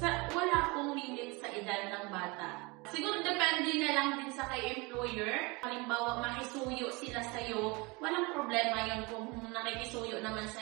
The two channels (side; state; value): left; quieter; 26.5 dB